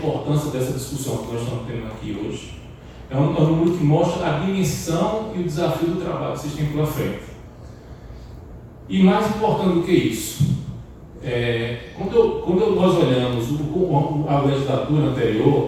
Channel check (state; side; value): identical; both; correlation 1.00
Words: dessa discussão que nós estamos tendo aqui hoje. É um número que mostra a dimensão e o desafio do trabalho que vocês têm pela frente. E mais importante do que isso, quando nós olhamos a legislatura